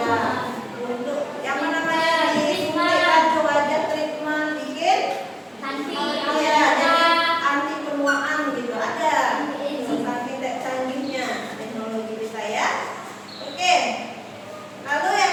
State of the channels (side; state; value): both; identical; correlation 1.00